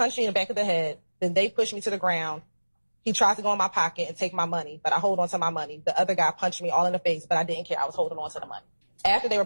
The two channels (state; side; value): inverted; both; correlation -1.00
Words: you in the back of the head. Then they pushed me to the ground. He tried to go in my pocket and take my money, but I hold on to my money. The other guy punched me all in the face, but I didn't care. I was holding on to the money. After they were